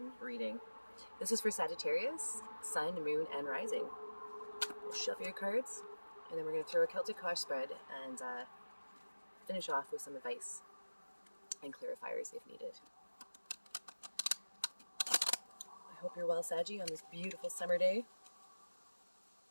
reading. This is for Sagittarius, Sun, Moon, and Rising. We'll shuffle your cards, and then we're going to throw a Celtic Kosh spread and finish off with some advice and clarifiers if needed. I hope you're well, Saggy, on this beautiful summer day.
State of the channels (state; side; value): inverted; both; correlation -1.00